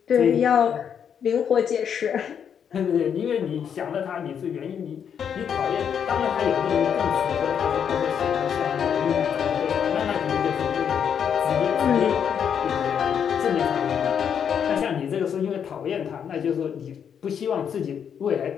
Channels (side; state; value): right; quieter; 7.9 dB